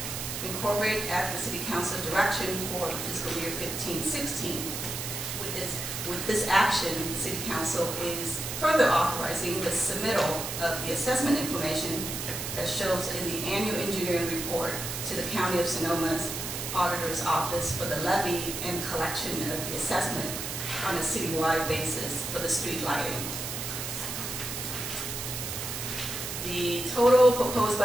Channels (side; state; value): right; noise; hiss, 5 dB below the sound